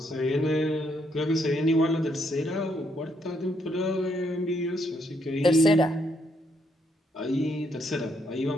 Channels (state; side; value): normal; both; correlation 0.74